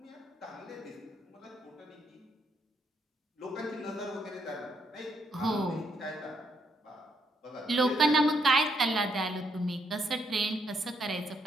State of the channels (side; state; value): both; normal; correlation 0.75